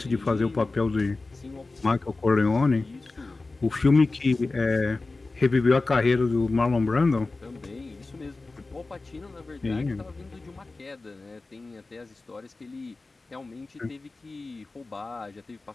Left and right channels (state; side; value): quieter; right; 3.4 dB